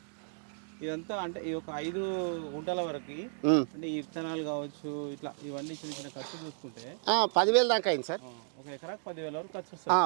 ఇదంతా అంటే ఈ ఒక 5 గుంటల వరకు అంటే ఈ విత్తనాలు కావచ్చు, ఇట్లా ఇవన్నీ చిన్న చిన్న ఖర్చు చూసుకుంటే 10,000 దాకా అయింది సార్. ఒక ఎకరాకు 10,000 వరకు ఖర్చు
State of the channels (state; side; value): silent; left; digital silence